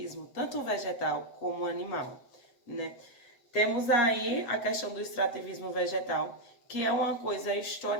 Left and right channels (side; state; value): right; late; 7.9 ms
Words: tanto vegetal como animal, né? Temos aí a questão do extrativismo vegetal, que é uma coisa